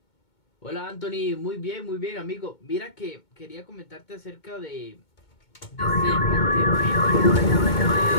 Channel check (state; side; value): late; right; 2.2 ms